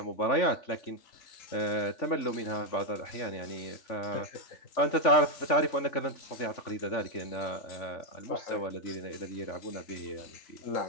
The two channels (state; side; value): late; right; 3.5 ms